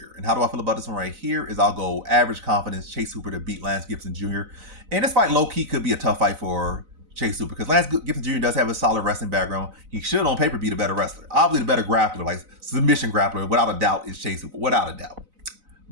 And how do I feel about this one right here is I'll go average confidence Chase Hooper to beat Lance Gibson Jr. And this fight low-key could be a tough fight for Chase Hooper because Lance Gibson Jr. does have a solid wrestling background. He should on paper be the better wrestler. Obviously the better grappler, like submission grappler, without a doubt, is Chase Hooper, without a doubt.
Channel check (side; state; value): left; late; 4.0 ms